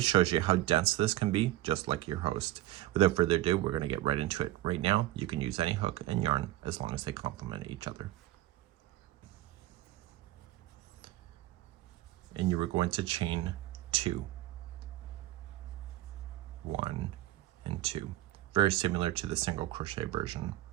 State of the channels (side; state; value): left; quieter; 15.7 dB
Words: shows you how dense this can be, just like your host. Without further ado, we're going to get right into it. Right now, you can use any hook and yarn as long as they complement each other. And you are going to chain 2, 1 and 2, very similar to the single crochet version.